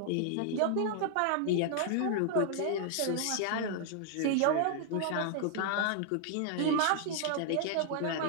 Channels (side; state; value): both; different; correlation 0.00